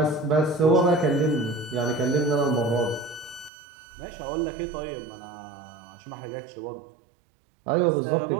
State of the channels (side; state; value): left; drops out; at 3.5 s